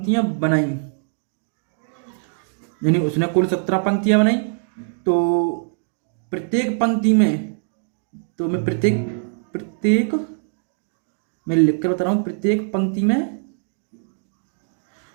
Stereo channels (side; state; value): left; silent; 64 dB below the other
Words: बनाई, यानी उसने कुल 17 पंक्तियां बनाई। तो प्रत्येक पंक्ति में, तो मैं प्रत्येक मैं लिख कर बता रहा हूँ, प्रत्येक पंक्ति